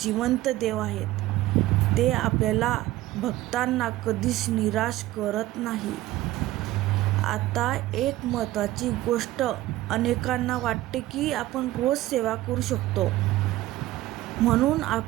देव आहेत. ते आपल्याला भक्तांना कधीच निराश करत नाही. आता एक महत्त्वाची गोष्ट. अनेकांना वाटते की आपण रोज सेवा करू शकतो म्हणून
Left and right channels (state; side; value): quieter; left; 16.0 dB